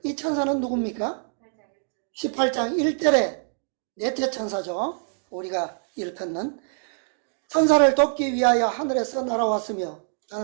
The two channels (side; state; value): left; silent; digital silence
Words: 이 천사는 누굽니까? 18장 1절의 넷째 천사죠. 우리가 일컫는 천사를 돕기 위하여 하늘에서 날아왔으며